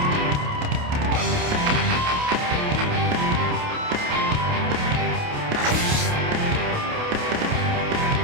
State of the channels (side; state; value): left; late; 28 ms